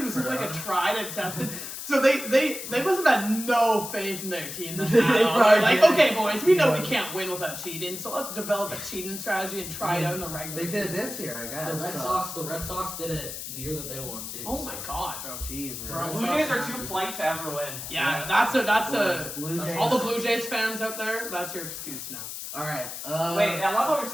This is like a tried and tested. So they must have had no faith in their team. They They're probably like, did. okay, boys, we know we can't win without cheating, so let's develop a cheating strategy and try it out in the regular They did season. this year, I guess. The Red Sox did it the year that they won too. Oh my god, bro. Jeez, Bro, man. Blue Jays are too polite to ever win. Yeah, that's a Blue Jays. all the Blue Jays fans out there, that's your excuse now. All right. Wait, I love how we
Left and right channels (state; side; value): noise; left; hiss, 8 dB below the sound